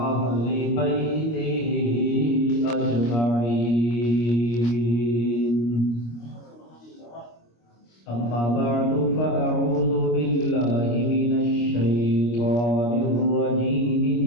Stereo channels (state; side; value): late; right; 25 ms